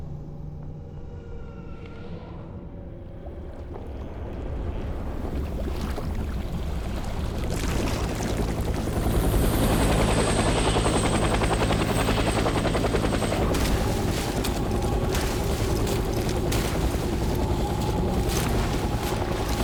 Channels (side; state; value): both; identical; correlation 1.00